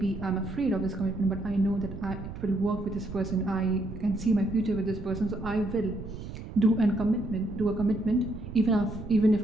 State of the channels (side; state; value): right; noise; rumble, 10 dB below the sound